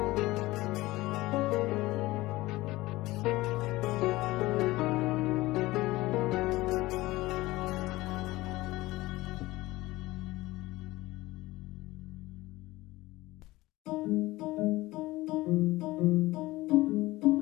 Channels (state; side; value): quieter; right; 19.0 dB